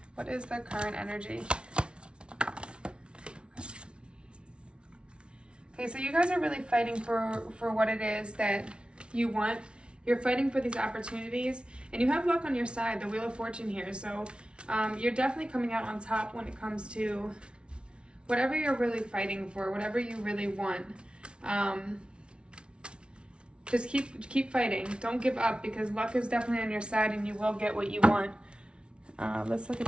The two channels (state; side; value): late; left; 0.057 ms